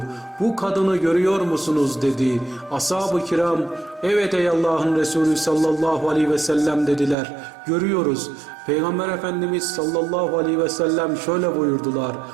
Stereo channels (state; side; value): drops out; left; at 7.2 s